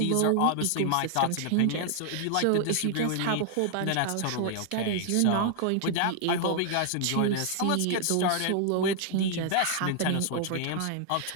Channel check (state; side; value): different; both; correlation 0.00